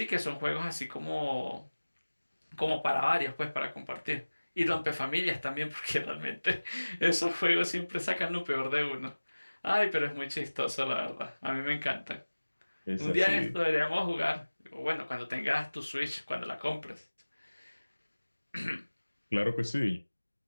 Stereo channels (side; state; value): both; inverted; correlation -1.00